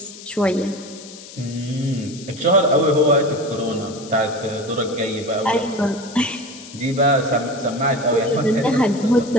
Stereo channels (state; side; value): noise; left; hiss, 16 dB below the sound